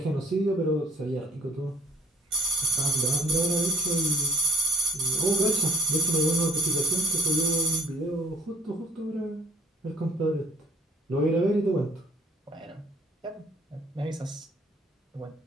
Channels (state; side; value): normal; both; correlation 0.52